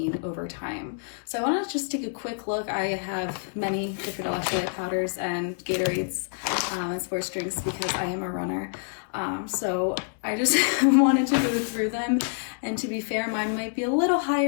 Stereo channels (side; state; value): right; silent; 60 dB below the other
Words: over time. So I want to just take a quick look. I have many different electrolyte powders and Gatorades and sports drinks because I am a runner. So I just wanted to go through them. And to be fair, mine might be a little